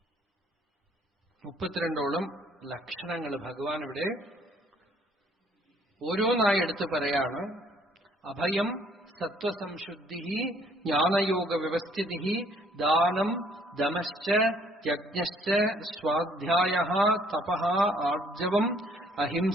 മുപ്പത്തിരണ്ടോളം ലക്ഷണങ്ങൾ ഭഗവാൻ ഇവിടെ ഓരോന്നായി എടുത്ത് പറയാണ്. അഭയം സത്വസംശുദ്ധി ജ്ഞാനയോഗ വ്യവസ്ഥിതി ദാനം ദമശ്ച യജ്ഞശ്ച സ്വാധ്യായഃ തപഃ ആർജവം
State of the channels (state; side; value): normal; both; correlation 0.62